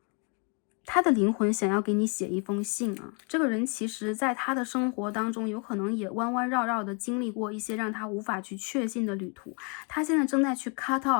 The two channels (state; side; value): quieter; right; 35.1 dB